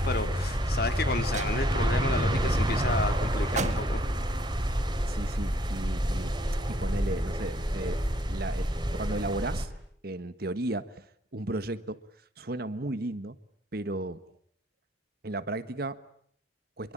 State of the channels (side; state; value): both; normal; correlation 0.66